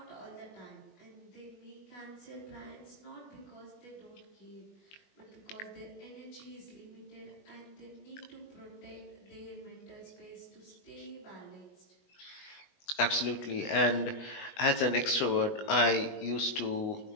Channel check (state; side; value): late; right; 20 ms